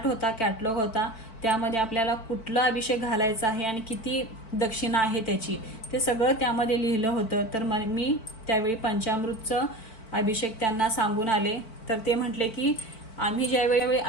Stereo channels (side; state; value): right; late; 4.5 ms